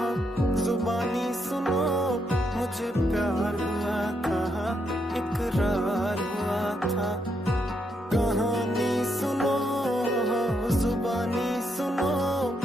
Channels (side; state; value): both; normal; correlation 0.78